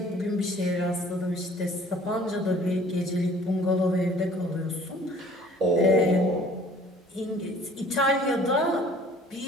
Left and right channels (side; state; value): both; normal; correlation 0.52